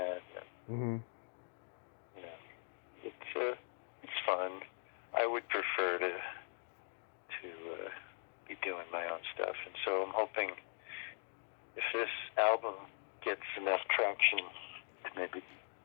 Mm-hmm. It's fun. I would prefer to be doing my own stuff, and so I'm hoping if this album gets enough traction to maybe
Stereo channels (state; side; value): silent; right; digital silence